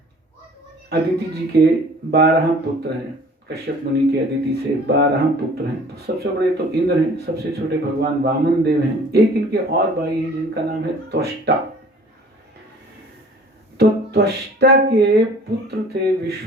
अदिति जी के 12 पुत्र हैं, कश्यप मुनि के अदिति से 12 पुत्र हैं। तो सबसे बड़े तो इंद्र हैं, सबसे छोटे भगवान वामन देव हैं। एक इनके और भाई हैं जिनका नाम है त्वष्टा। तो त्वष्टा के पुत्र थे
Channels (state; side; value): normal; both; correlation 0.50